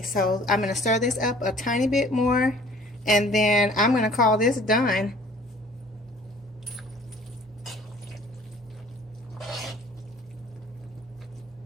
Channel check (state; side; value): normal; both; correlation 0.52